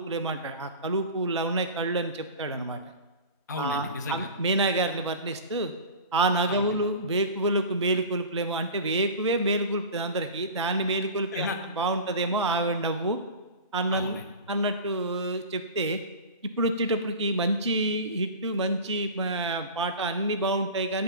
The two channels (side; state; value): both; inverted; correlation -0.34